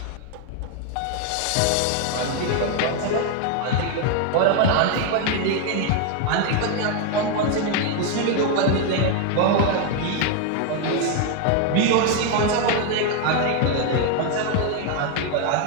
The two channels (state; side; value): different; both; correlation 0.01